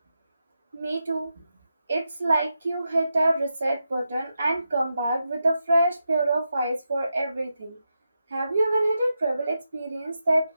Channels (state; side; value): inverted; both; correlation -0.87